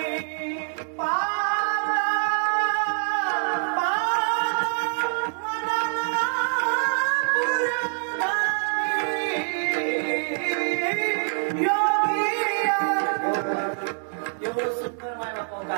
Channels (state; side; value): silent; left; digital silence